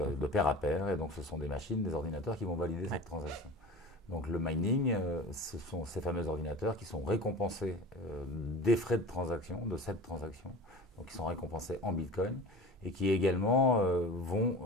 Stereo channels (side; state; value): both; normal; correlation 0.36